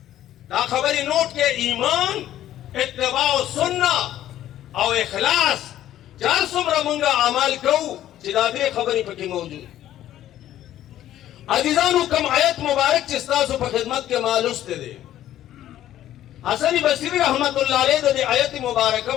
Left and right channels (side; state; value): right; quieter; 12.6 dB